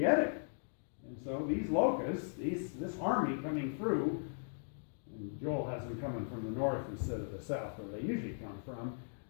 it. And so these locusts, this army coming through, and Joel has them coming from the north instead of the south, where they usually come from.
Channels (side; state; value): right; silent; digital silence